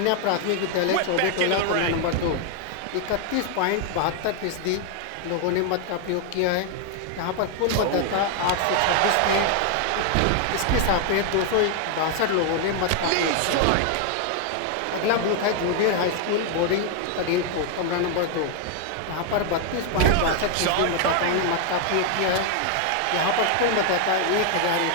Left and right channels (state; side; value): different; both; correlation 0.00